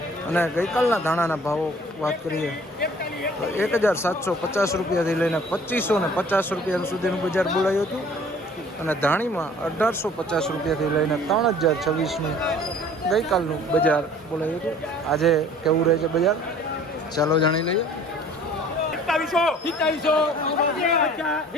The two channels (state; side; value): normal; both; correlation 0.51